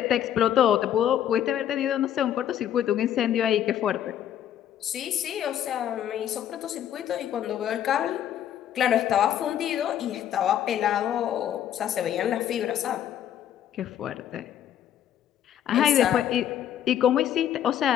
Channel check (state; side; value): quieter; right; 10.5 dB